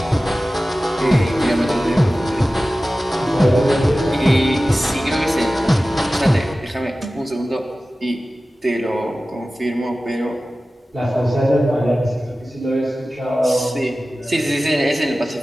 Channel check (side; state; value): both; normal; correlation 0.96